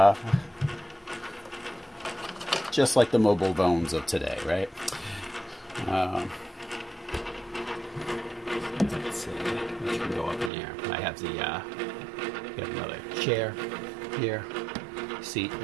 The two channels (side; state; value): left; drops out; at 10.5 s